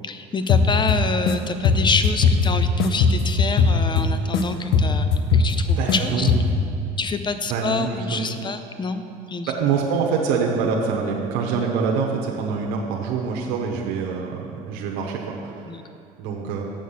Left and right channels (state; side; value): normal; both; correlation 0.39